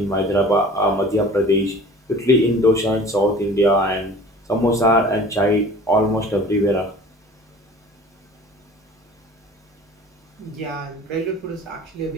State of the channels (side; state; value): both; normal; correlation 0.45